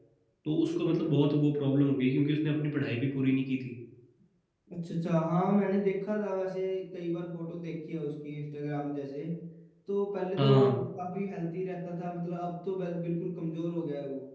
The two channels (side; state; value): both; identical; correlation 1.00